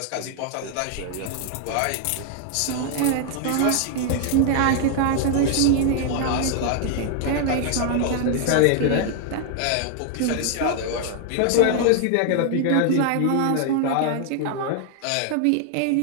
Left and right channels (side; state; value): both; different; correlation 0.00